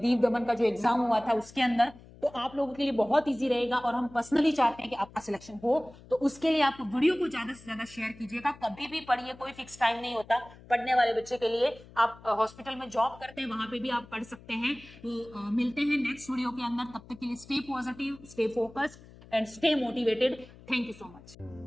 दमन का जो एग्जाम हुआ था उसके अंदर, तो आप लोगों के लिए बहुत इजी रहेगा, और हम पर्सनली चाहते हैं कि आपका सिलेक्शन हो, तो उसके लिए आप वीडियो को ज्यादा से ज्यादा शेयर कीजिएगा, कभी भी पढ़िए, कोई फिक्स टाइम नहीं होता पढ़ने वाले बच्चे के लिए, आप हॉस्पिटल में जॉब करते हैं वहां पे भी आप पढ़ सकते हैं। तो मिलते हैं नेक्स्ट वीडियो के अंदर, तब तक के लिए stay positive, stay focused and stay motivated. Thank you so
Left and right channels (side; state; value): left; noise; hum, 21 dB below the sound